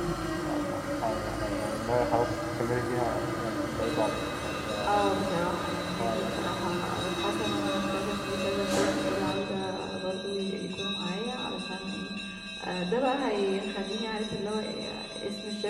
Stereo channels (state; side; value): identical; both; correlation 1.00